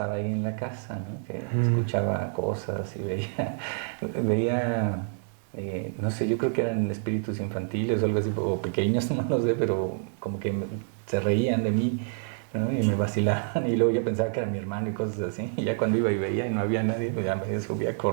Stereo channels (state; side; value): silent; left; 60 dB below the other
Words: ahí en la casa, ¿no? Que escuchaba cosas y veía no sé, yo creo que eran espíritus infantiles o algo así, o pequeños, no lo sé, pero como que se reían de mí, ¿no? Y me vacilaban, y luego yo pensaba que era mi hermano y cosas así, y ya cuando iba y veía y no había nadie, pues ya me subía